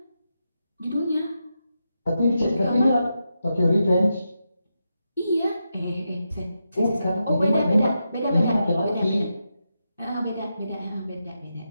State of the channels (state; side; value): inverted; both; correlation -0.86